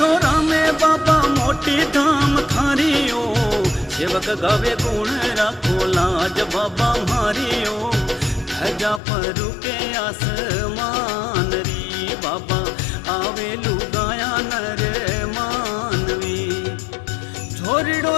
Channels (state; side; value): drops out; right; at 9.0 s